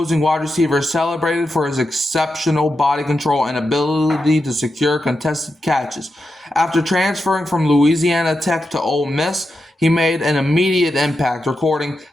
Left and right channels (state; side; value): normal; both; correlation 0.88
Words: wide receiver celebrated for his exceptional body control and ability to secure contested catches. After transferring from Louisiana Tech to Ole Miss, he made an immediate impact, recording